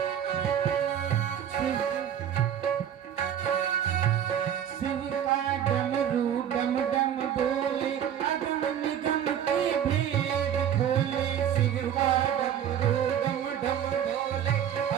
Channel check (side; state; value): left; quieter; 9.5 dB